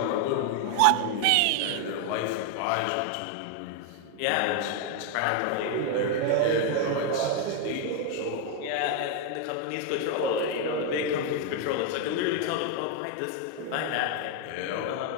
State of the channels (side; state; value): both; different; correlation 0.01